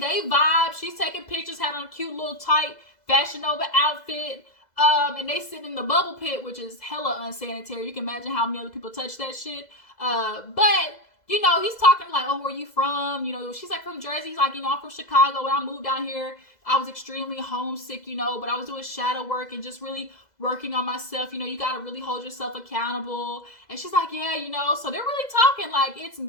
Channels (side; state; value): right; late; 2.0 ms